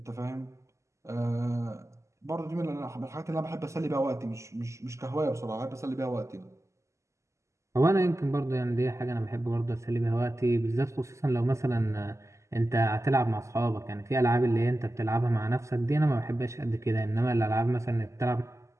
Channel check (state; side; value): late; left; 0.14 ms